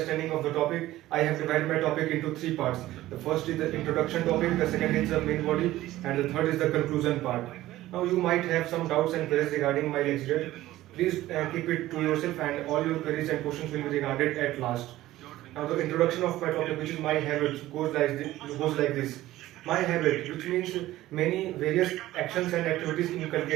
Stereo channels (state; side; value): quieter; left; 15.7 dB